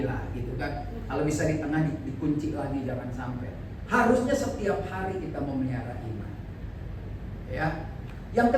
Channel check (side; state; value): both; identical; correlation 1.00